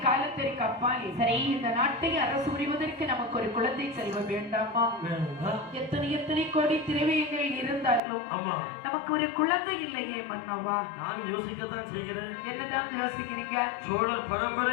காலத்திற்கு அப்பால் சரி இந்த நாட்டை அரசு புரிவதற்கு நமக்கு ஒரு குழந்தை செல்வம் வேண்டாமா? எத்தனை எத்தனை கோடி திரவியங்கள் இருந்தாலும் நமக்கு ஒரு குழந்தை இல்லையே மன்னவா? நான் யோசிக்கத்தான் செய்கிறேன். என்னதான் யோசிக்கிறீங்க? சோழர்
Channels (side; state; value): right; drops out; at 8.0 s